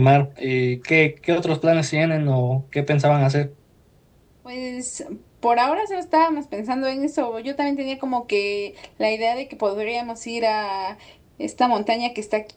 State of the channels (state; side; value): identical; both; correlation 1.00